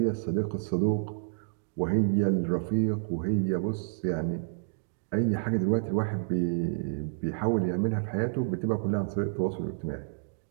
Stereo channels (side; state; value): left; silent; digital silence